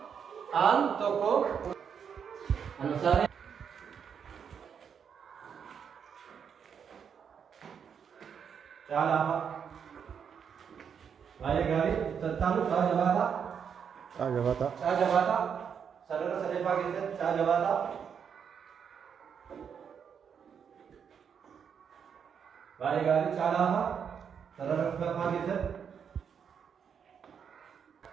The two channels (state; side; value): quieter; left; 7.3 dB